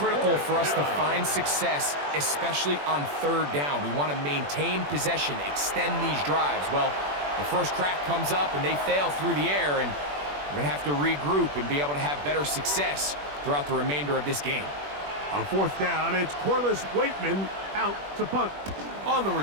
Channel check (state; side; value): late; left; 21 ms